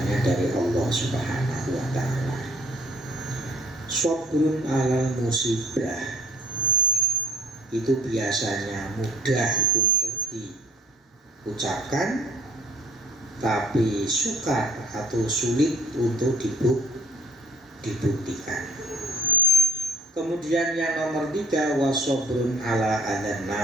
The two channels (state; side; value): normal; both; correlation 0.57